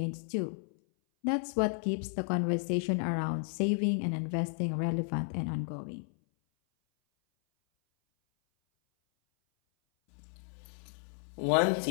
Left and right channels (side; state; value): right; silent; 56 dB below the other